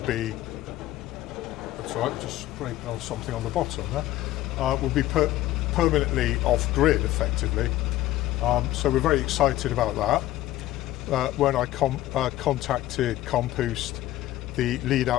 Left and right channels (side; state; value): right; quieter; 15.2 dB